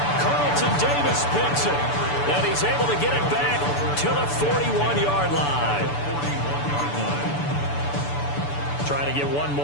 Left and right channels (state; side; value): late; right; 6.9 ms